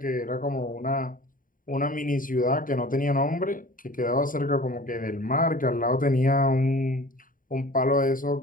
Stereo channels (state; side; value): late; right; 0.40 ms